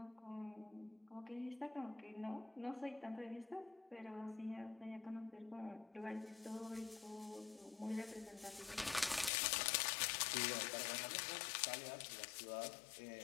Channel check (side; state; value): right; drops out; at 9.3 s